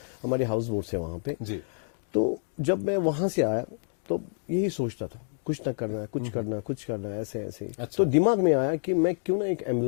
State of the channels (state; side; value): silent; right; 59 dB below the other